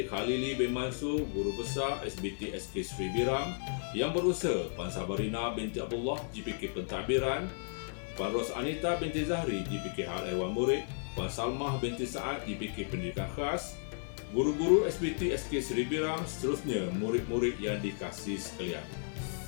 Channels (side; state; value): right; silent; 55 dB below the other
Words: Khalili bin Mansur, Guru Besar SBT SK Seri Biram. Yang berusaha Puan Sabarina binti Abdullah GPK Pentadbiran, Puan Ros Anita binti Zahri GPK Hal Ehwal Murid, Puan Salmah binti Saad GPK Pendidikan Khas, guru-guru SBT SK Seri Biram, seterusnya murid-murid yang dikasihi sekalian.